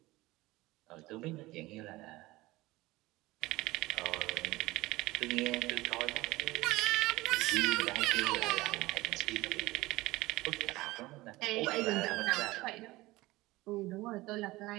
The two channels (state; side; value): quieter; left; 19.6 dB